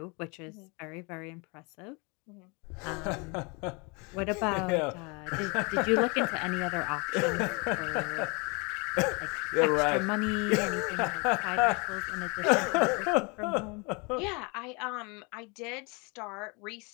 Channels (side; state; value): right; quieter; 30.4 dB